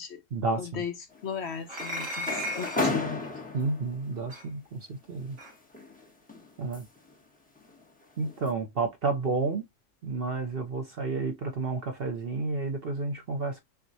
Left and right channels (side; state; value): both; normal; correlation -0.06